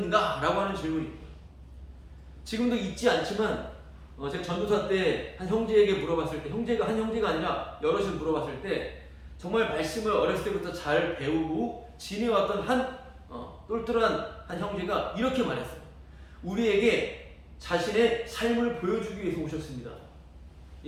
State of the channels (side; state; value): both; identical; correlation 1.00